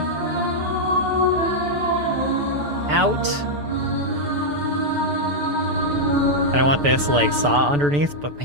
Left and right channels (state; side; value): late; left; 6.9 ms